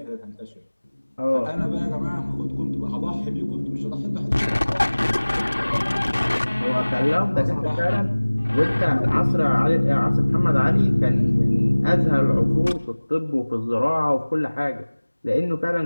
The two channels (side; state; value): both; inverted; correlation -1.00